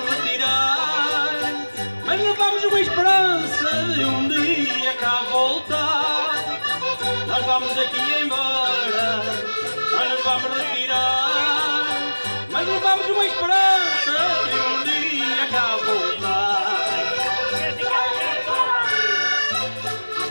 retirar, mas levamos uma esperança de um dia cá voltar. Nós vamos daqui embora, não nos vamos retirar, mas levamos uma esperança de um dia cá voltar. Daqui para ali,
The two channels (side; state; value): both; inverted; correlation -1.00